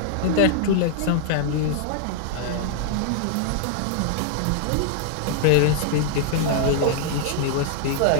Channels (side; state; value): both; different; correlation -0.01